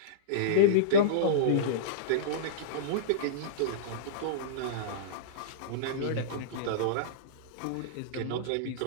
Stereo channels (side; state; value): both; different; correlation -0.04